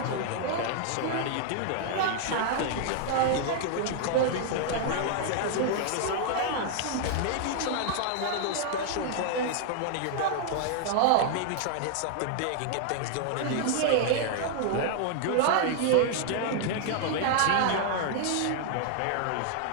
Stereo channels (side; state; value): both; different; correlation 0.00